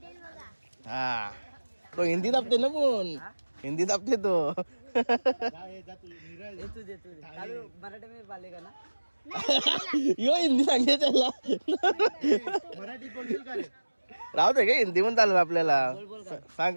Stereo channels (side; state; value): both; inverted; correlation -1.00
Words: हा तो हिंदी दाबते ना पण हिंदी दाबते तो. यो हिंदी सांगते त्याला. मराठी बोलशील का रे? राहू दे का हिंदी पण चालेल आपल्याला.